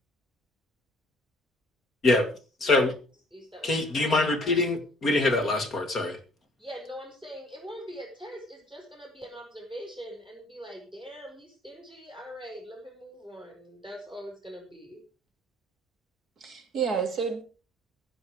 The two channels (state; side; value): normal; both; correlation 0.57